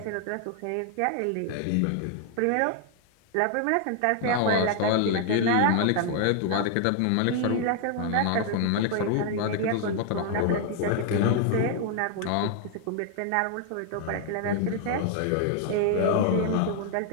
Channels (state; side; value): different; both; correlation 0.00